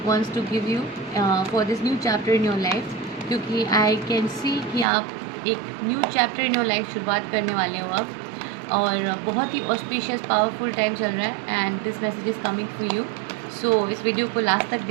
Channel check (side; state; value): left; drops out; at 4.9 s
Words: wants to give you for this new chapter in your life? क्योंकि I can see कि आप एक new chapter in your life शुरुआत करने वाले हो अब, और बहुत ही ऑस्पिशियस पावरफुल टाइम चल रहा है and this message is coming for you. So इस वीडियो को लास्ट तक